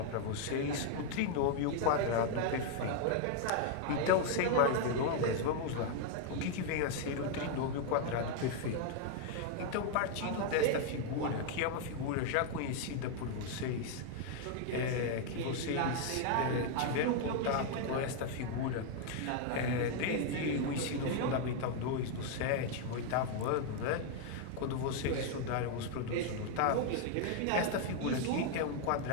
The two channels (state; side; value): different; both; correlation 0.00